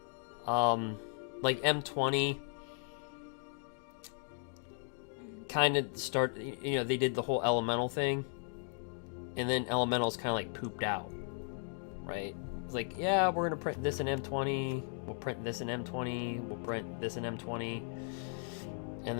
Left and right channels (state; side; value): silent; right; 54 dB below the other